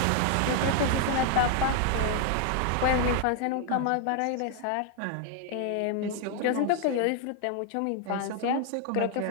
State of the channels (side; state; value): both; different; correlation 0.00